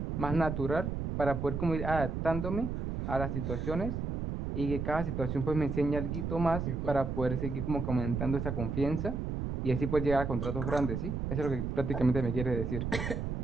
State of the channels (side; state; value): right; noise; rumble, 3 dB below the sound